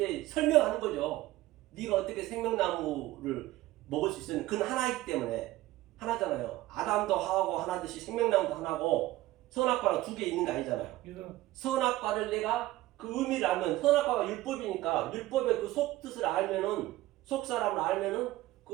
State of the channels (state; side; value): quieter; left; 16.8 dB